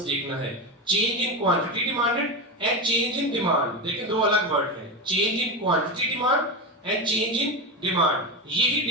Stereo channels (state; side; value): normal; both; correlation 0.17